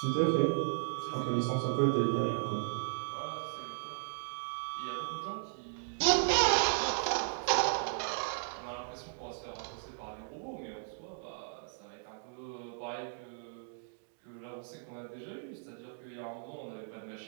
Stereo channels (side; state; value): left; silent; digital silence